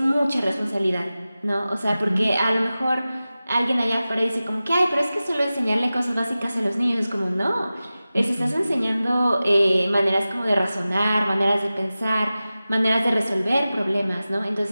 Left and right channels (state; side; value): inverted; both; correlation -0.96